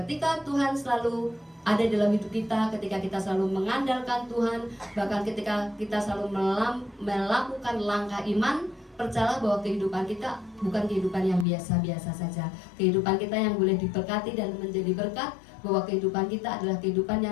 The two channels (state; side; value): drops out; right; at 11.5 s